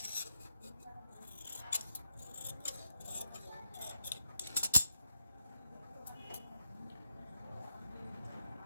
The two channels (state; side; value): inverted; both; correlation -0.82